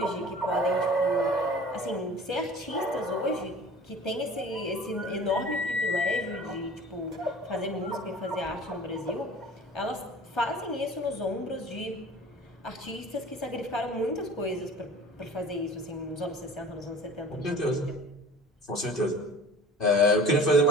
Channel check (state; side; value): normal; both; correlation 0.43